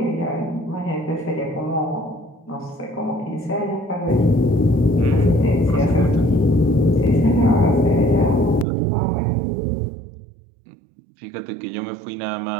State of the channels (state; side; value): drops out; left; at 8.7 s